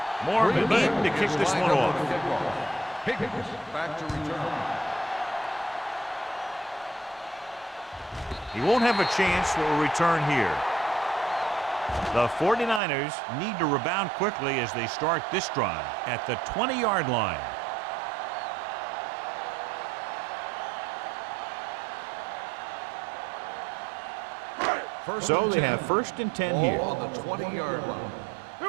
Morgan in to kick this one off. Higgins back to return. He won't have a chance for a return here. The 49ers need to rebound quickly as they start this drive at the 20-yard line. So they have first and 10 here. Ball on the 20-yard line. Here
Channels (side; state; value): left; drops out; at 12.8 s